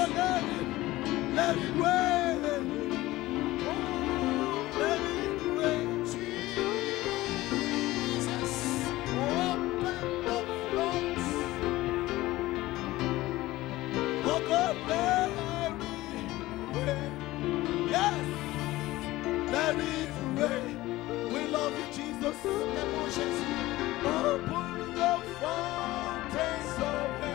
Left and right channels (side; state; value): right; quieter; 17.8 dB